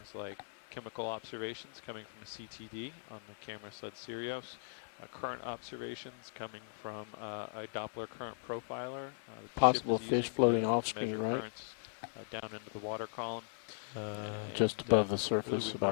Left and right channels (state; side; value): silent; right; digital silence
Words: like chemical observations coming from a CTD on the camera sled Sirius, current observations coming from a Doppler current profiler that the ship is using to measure currents down into the water column. Just above the surface. Really we